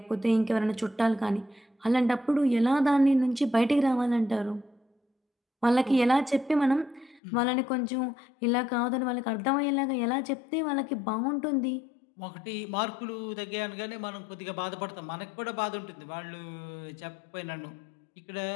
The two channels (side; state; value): right; drops out; at 7.2 s